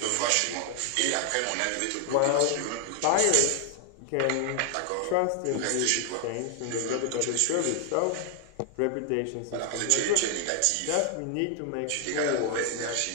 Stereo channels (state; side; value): different; both; correlation 0.00